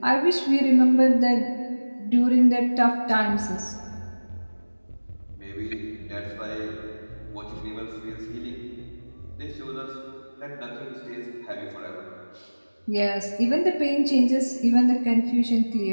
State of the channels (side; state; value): both; inverted; correlation -1.00